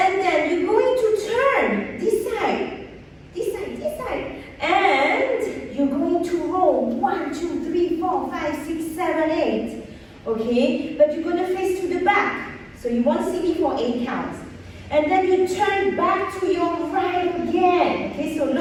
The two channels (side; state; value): both; identical; correlation 1.00